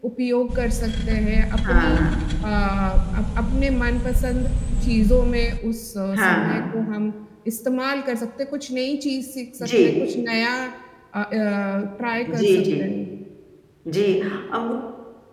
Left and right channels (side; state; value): both; identical; correlation 1.00